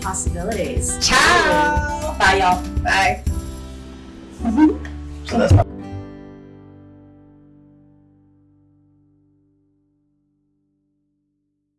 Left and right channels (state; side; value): identical; both; correlation 1.00